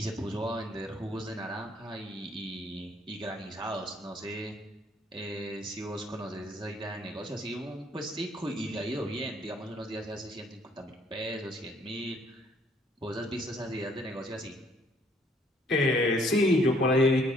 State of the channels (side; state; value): both; normal; correlation 0.63